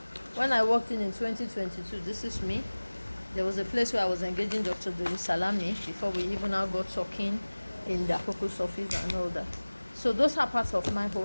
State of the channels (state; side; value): inverted; both; correlation -1.00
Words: When I walked in 2022, this is me. There was a place where I was engaging Dr. Dori Salami before we even now got talking in the Akoko's office and all that. So those are parts of my